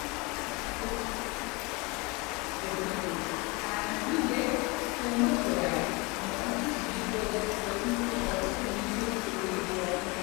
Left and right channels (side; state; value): right; quieter; 27.0 dB